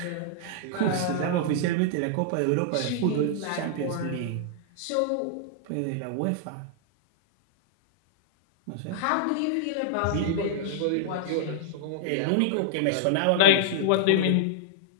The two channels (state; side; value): different; both; correlation -0.01